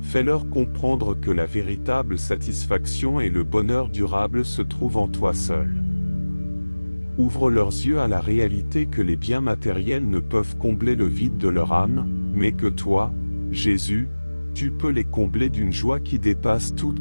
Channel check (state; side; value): inverted; both; correlation -1.00